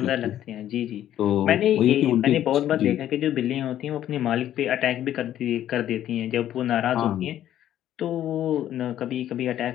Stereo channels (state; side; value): quieter; right; 11.8 dB